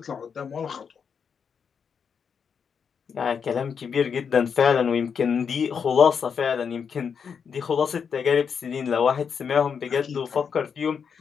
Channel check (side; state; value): right; quieter; 6.6 dB